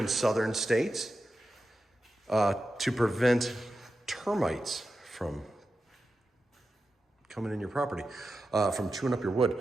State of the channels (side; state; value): both; normal; correlation 0.91